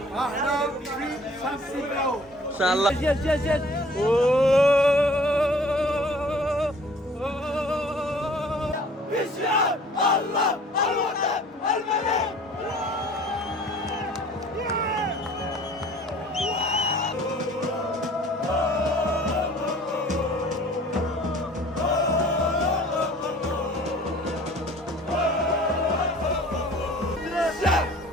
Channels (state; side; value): normal; both; correlation 0.50